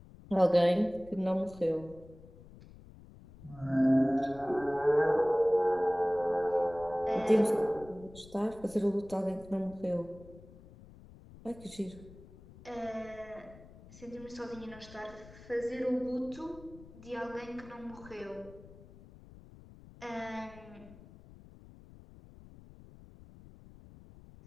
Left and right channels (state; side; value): noise; left; rumble, 20 dB below the sound